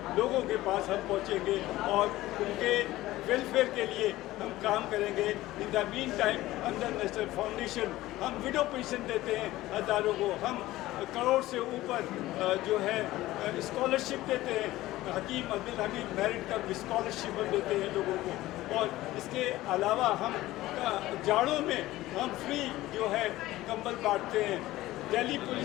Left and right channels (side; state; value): right; quieter; 16.7 dB